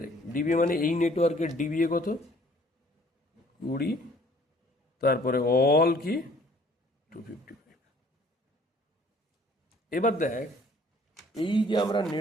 দেখ, ডিবিএ মানে এই নেটওয়ার্কের ডিবিএ কত? 20, তারপরে অল কি 255। এবার দেখ, এই যে আমরা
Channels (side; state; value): both; normal; correlation 0.57